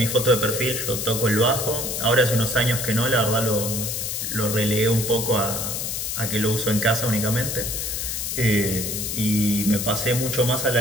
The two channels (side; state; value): left; noise; hiss, 3 dB below the sound